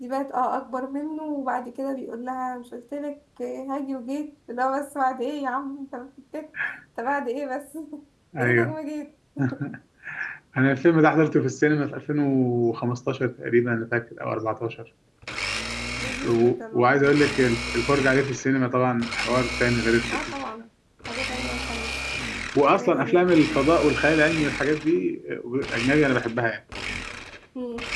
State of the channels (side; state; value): both; identical; correlation 1.00